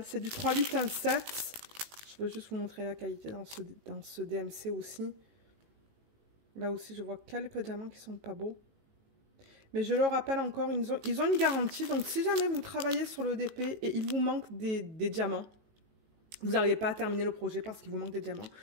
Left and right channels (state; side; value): late; left; 19 ms